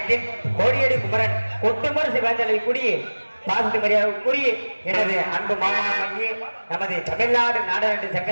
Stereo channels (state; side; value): inverted; both; correlation -1.00